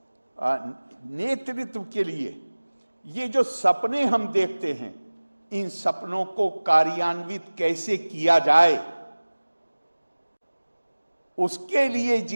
नेतृत्व के लिए ये जो सपने हम देखते हैं, इन सपनों को कार्यान्वित कैसे किया जाए, उसके लिए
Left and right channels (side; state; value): both; inverted; correlation -1.00